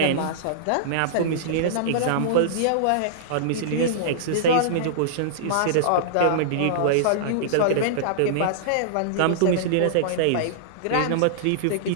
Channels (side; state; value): both; different; correlation -0.02